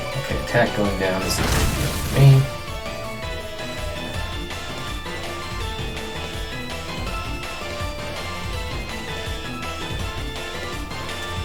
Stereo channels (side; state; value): both; identical; correlation 1.00